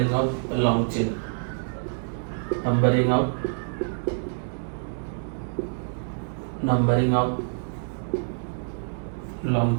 of long chain, numbering of long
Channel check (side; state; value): left; silent; digital silence